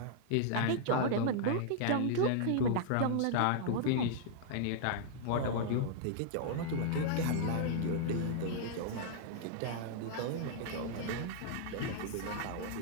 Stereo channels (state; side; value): different; both; correlation -0.01